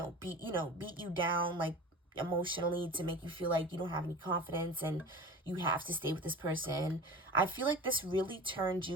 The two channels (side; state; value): both; normal; correlation 0.35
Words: beat you down, like emotionally, to make you feel like you don't have any confidence and you have to stay with this person. I feel like this really turned